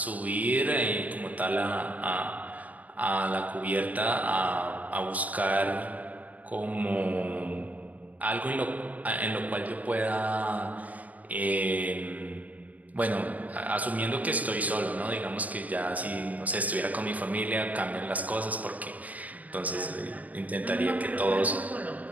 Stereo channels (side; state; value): left; late; 0.074 ms